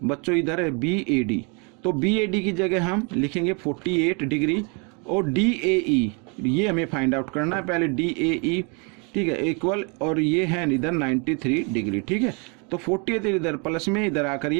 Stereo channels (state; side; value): quieter; left; 34.1 dB